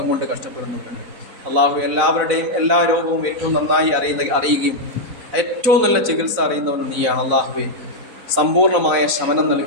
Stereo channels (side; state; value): left; late; 4.0 ms